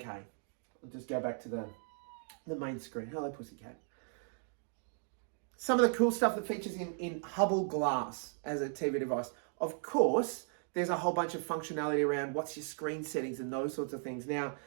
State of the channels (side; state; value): left; silent; 53 dB below the other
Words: I'll just go back to the main screen. Hello, pussycat. Some of the cool stuff that features in Hubbl Glass as a TV device. Of course, there's a whole bunch of functionality around what's your screen settings and those sorts of things. Now,